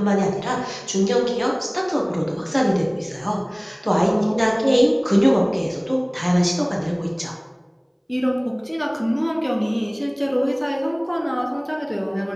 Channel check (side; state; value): both; identical; correlation 1.00